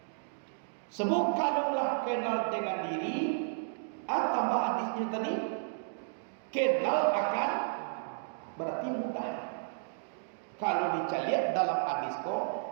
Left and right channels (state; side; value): silent; left; digital silence